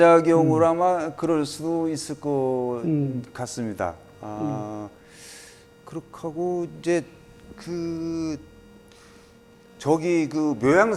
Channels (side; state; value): both; identical; correlation 1.00